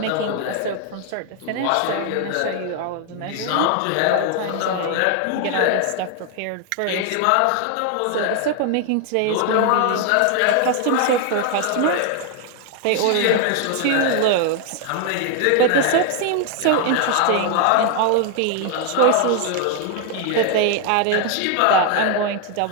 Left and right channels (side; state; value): both; different; correlation 0.00